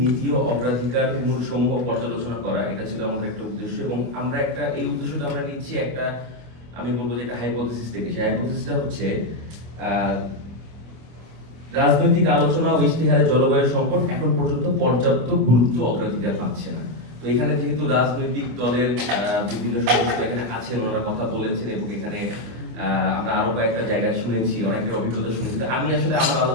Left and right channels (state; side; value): late; left; 25 ms